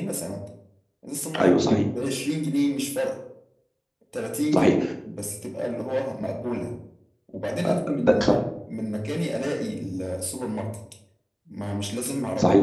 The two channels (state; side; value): identical; both; correlation 1.00